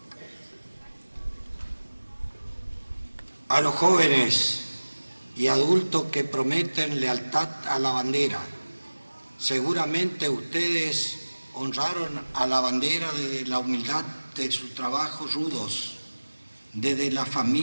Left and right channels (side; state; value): both; inverted; correlation -1.00